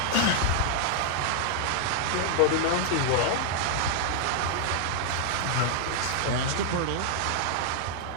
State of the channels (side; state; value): both; different; correlation 0.00